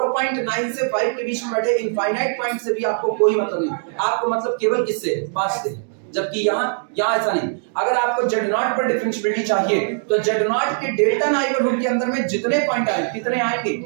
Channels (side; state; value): left; silent; digital silence